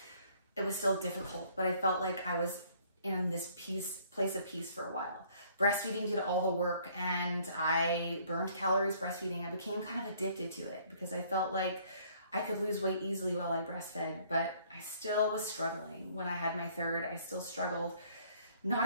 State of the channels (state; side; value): inverted; both; correlation -0.60